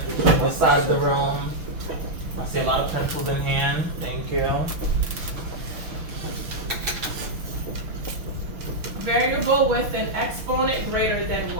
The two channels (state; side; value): late; left; 6.2 ms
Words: this side of the room. I see a lot of pencils in hand. Thank you. Variable with an exponent greater than